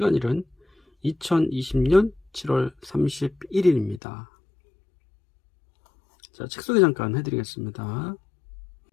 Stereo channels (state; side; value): drops out; right; at 4.0 s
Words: 2020년 7월 31일입니다. 자, 책 소개 잠깐 해드리겠습니다.